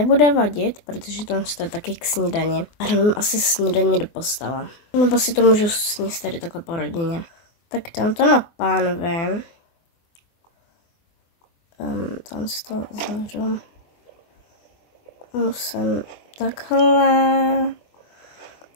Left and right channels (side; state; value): right; late; 24 ms